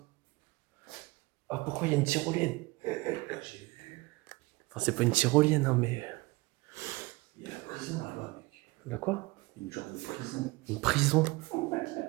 Ah, pourquoi il y a une tyrolienne? J'ai vu. Enfin, c'est pas une tyrolienne, hein, mais... Il y a la prison là-bas, mec. La quoi? Une genre de prison. Une prison?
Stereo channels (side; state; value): left; quieter; 22.9 dB